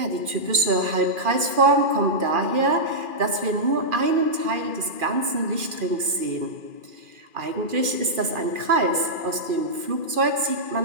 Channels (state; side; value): late; left; 2.4 ms